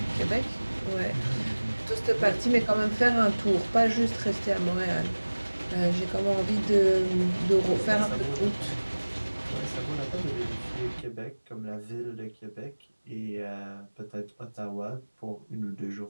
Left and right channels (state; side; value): inverted; both; correlation -1.00